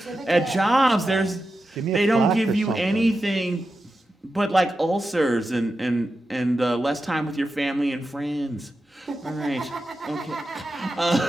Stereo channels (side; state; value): both; normal; correlation 0.90